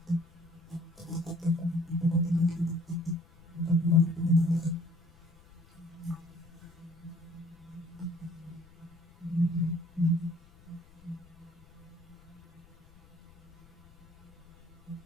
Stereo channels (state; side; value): noise; left; rumble, 26 dB below the sound